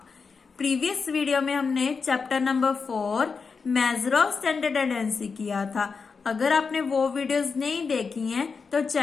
प्रीवियस वीडियो में हमने chapter number 4 major of centre tendency किया था। अगर आपने वो वीडियोस नहीं देखी हैं तो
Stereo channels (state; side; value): quieter; right; 5.1 dB